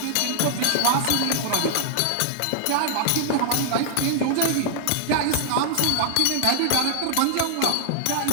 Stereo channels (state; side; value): different; both; correlation -0.01